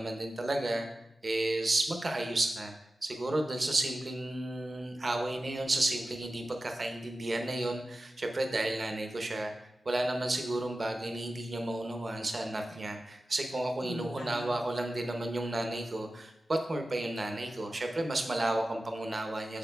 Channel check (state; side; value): normal; both; correlation 0.95